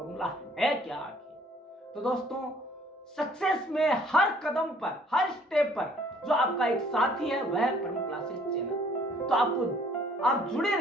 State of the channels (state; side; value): normal; both; correlation 0.59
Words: है क्या आखिर। तो दोस्तों, सक्सेस में हर कदम पर, हर स्टेप पर जो आपका एक साथी है वह है परम क्लासेस चैनल। तो आप जुड़े